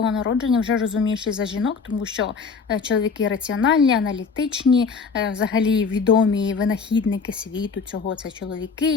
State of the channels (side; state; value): right; quieter; 5.2 dB